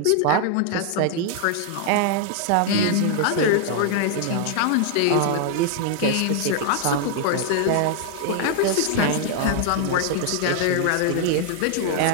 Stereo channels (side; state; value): both; different; correlation 0.00